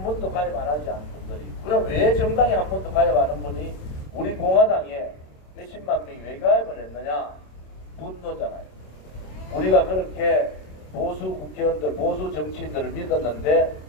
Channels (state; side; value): late; right; 27 ms